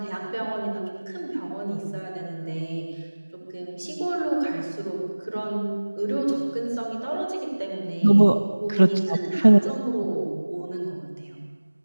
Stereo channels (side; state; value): both; inverted; correlation -1.00